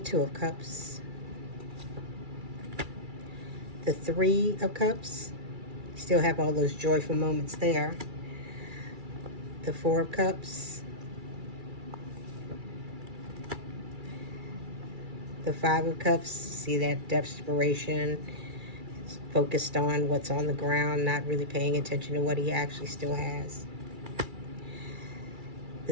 of Cups, the Three of Cups, still have all those joyful moments there, the Four of Cups, the Five of Cups, see that desperation, focused on what's on the ground, not really paying attention to what he actually still has.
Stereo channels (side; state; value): left; late; 2.3 ms